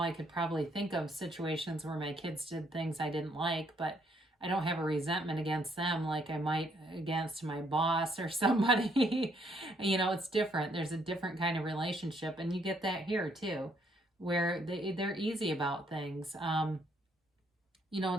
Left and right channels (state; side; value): normal; both; correlation 0.70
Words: I could probably think of situations where my kids did things I didn't like, but I don't have a resentment against them like I might against my boss or somebody. You know, it's different. There's a different kind of relationship, and you get that here too, where they're easy about things. You know,